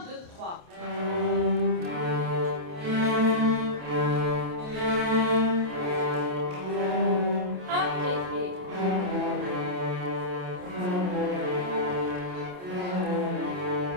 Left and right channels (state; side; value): late; left; 28 ms